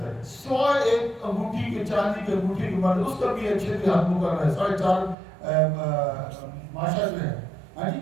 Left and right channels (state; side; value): drops out; left; at 5.2 s